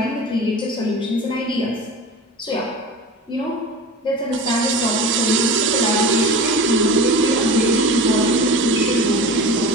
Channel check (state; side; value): normal; both; correlation 0.33